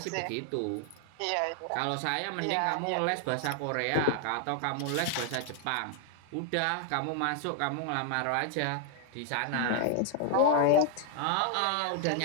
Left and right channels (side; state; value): both; different; correlation 0.00